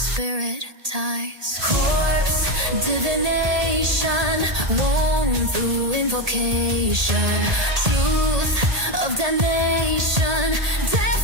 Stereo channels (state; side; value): late; left; 1.8 ms